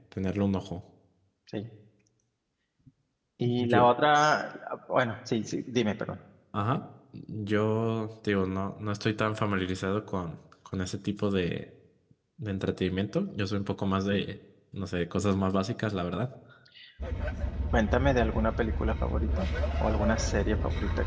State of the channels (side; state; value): both; identical; correlation 1.00